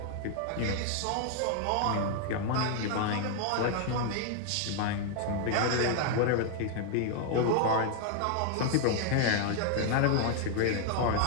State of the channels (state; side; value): different; both; correlation 0.00